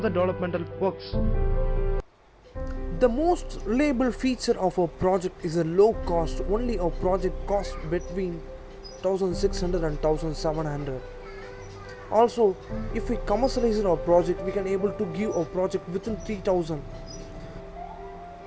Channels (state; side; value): identical; both; correlation 1.00